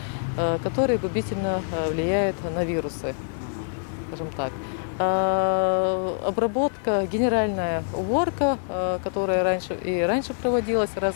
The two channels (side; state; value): right; silent; digital silence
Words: которые губительно влияют на вирусы, скажем так. Обработка, генеральная уборка, которая раньше проводилась раз